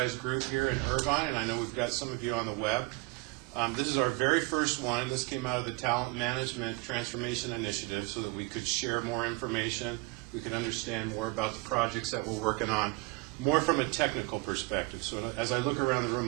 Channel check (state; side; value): quieter; left; 25.4 dB